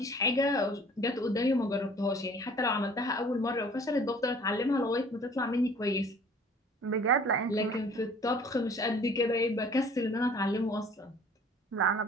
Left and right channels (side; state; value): both; normal; correlation 0.51